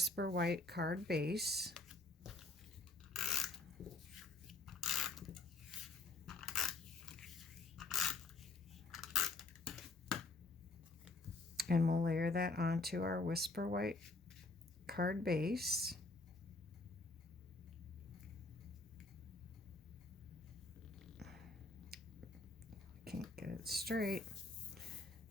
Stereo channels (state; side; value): quieter; right; 3.2 dB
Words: White card base. And we'll layer that onto our Whisper White card base. Can't get it straight.